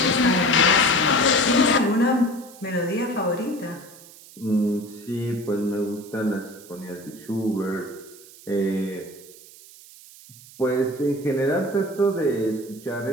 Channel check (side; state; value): right; noise; hiss, 21 dB below the sound